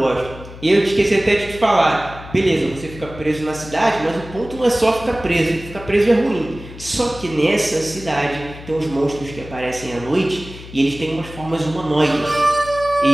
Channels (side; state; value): left; noise; hum, 15 dB below the sound